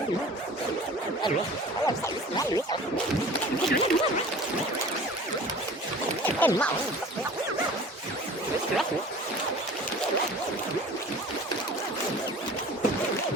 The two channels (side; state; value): both; normal; correlation 0.42